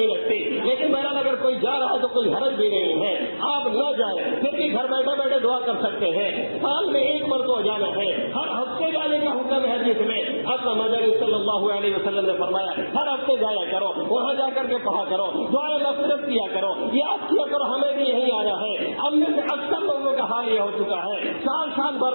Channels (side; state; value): both; inverted; correlation -1.00